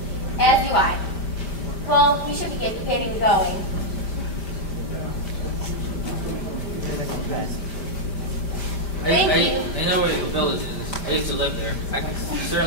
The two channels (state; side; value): late; right; 5.1 ms